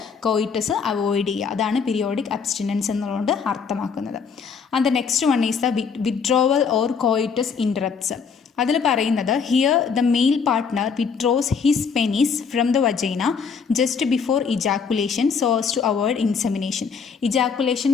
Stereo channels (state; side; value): quieter; right; 5.9 dB